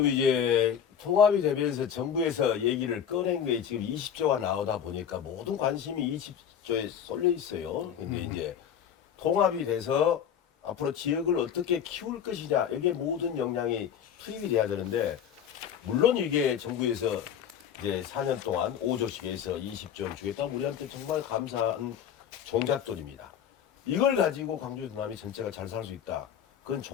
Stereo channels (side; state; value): right; quieter; 8.6 dB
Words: 이제 통합이 되면서 정부에서 얘기를 꺼낸 게 지금 20조가 나오다 보니까 모든 관심이 20조에 쏠려 있어요. 근데 이제 통합이 돼서 앞으로 지역을 어떻게 키울 것이냐, 여기에 모든 역량이 투입이 돼야 되는데, 물론 이게 정부에서 이제 4년 동안 5조씩 해서 20조를 주겠다. 우리한테 정말 감사한 종잣돈입니다. 이걸 가지고 광주 전남이 전체가 잘 살 수 있다. 그건